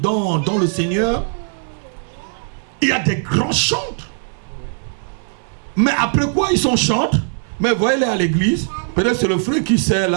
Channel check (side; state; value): left; silent; 66 dB below the other